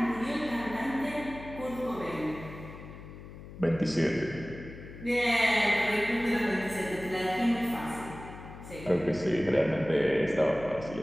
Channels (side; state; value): left; noise; hum, 14 dB below the sound